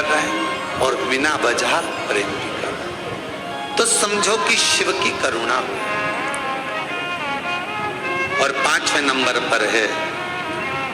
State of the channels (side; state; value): both; identical; correlation 1.00